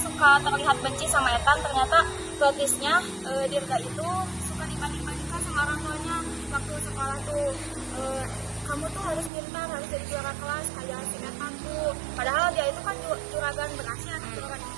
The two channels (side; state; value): left; drops out; at 9.3 s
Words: terlihat benci sama Ethan? Ternyata plotnya Dirga itu suka dibanding-bandingkan sama orang tuanya waktu sekolah tuh. Kamu tuh harus pintar, harus jadi juara kelas kayak si Ethan tuh. Padahal dia itu kan juragan beras ya, juragan